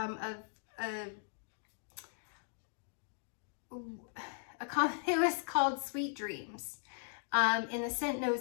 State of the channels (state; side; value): silent; right; digital silence